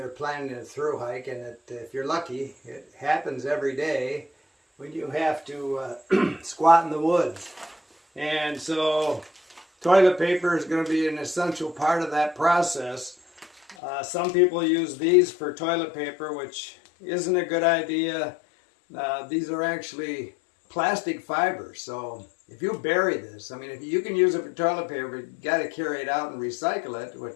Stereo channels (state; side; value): drops out; right; at 13.8 s